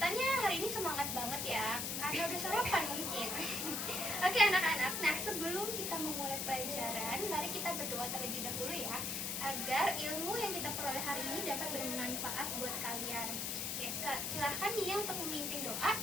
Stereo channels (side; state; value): left; noise; hiss, 1 dB below the sound